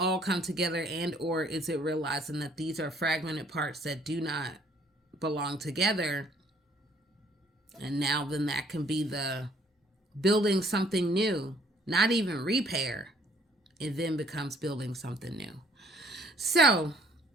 come together, and or is it realizing that these are fragmented parts that do not belong together? And now then that can be the building something new, not even repair. It then becomes building something new. So,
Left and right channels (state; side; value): normal; both; correlation 0.61